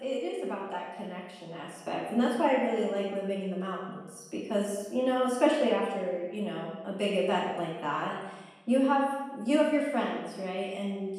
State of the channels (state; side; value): identical; both; correlation 1.00